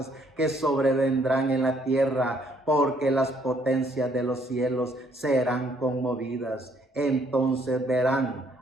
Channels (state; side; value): normal; both; correlation 0.67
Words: que sobrevendrán en la tierra, porque las potencias de los cielos serán conmovidas. Entonces